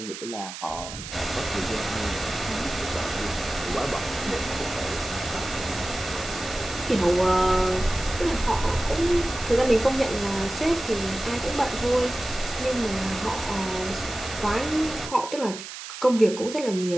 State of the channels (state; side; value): noise; right; hiss, 10 dB below the sound